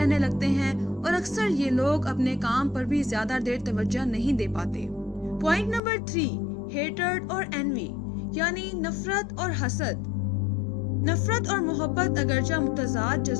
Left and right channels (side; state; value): right; drops out; at 5.8 s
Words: लगते हैं और अक्सर ये लोग अपने काम पर भी ज्यादा देर तवज्जो नहीं दे पाते। पॉइंट नंबर 3, हेटर्ड और एनवी यानी नफरत और हसद। नफरत और मोहब्बत अगरचा मुतजाद